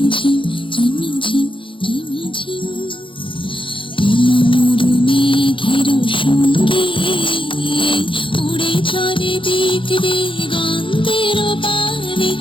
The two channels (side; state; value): right; late; 0.25 ms